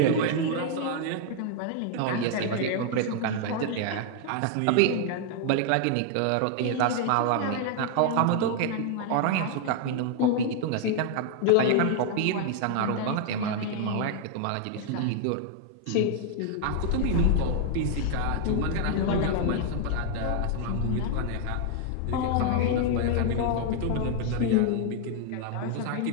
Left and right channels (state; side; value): different; both; correlation 0.00